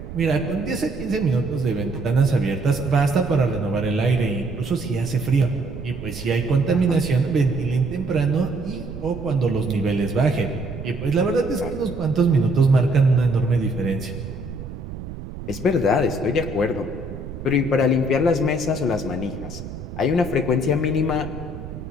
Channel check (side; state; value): right; noise; rumble, 11 dB below the sound